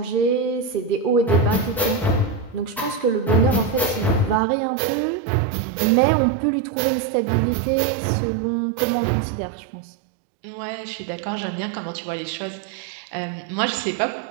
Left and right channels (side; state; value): left; drops out; at 4.4 s